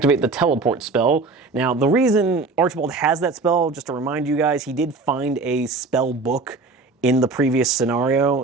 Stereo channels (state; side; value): quieter; left; 3.8 dB